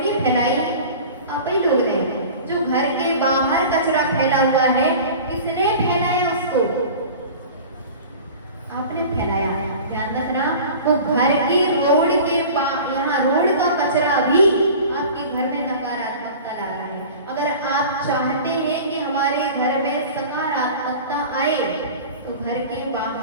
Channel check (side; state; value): both; inverted; correlation -0.39